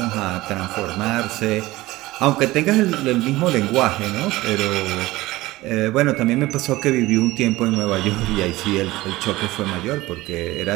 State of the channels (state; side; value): quieter; left; 18.6 dB